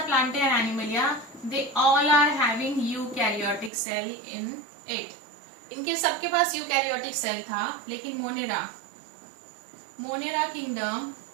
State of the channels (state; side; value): drops out; left; at 3.7 s